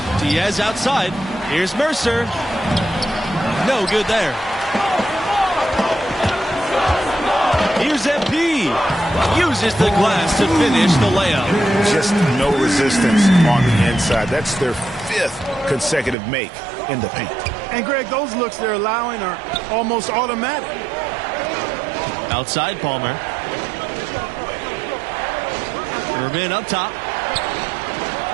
Diaz outside. Here's Mercer. No good there. here's MP. Uses the glass to finish the layup. Just no resistance on the inside. That's their 5th consecutive make in the paint. And, Greg, those looks they're allowing are almost automatic. Outside Palmer. Irvin up top.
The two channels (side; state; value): left; drops out; at 16.2 s